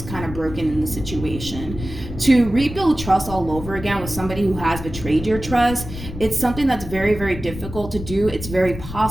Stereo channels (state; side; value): noise; left; rumble, 10 dB below the sound